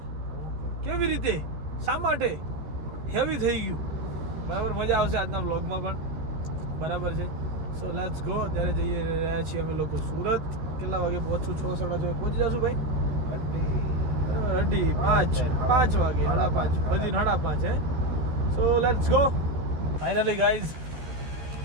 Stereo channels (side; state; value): left; late; 13 ms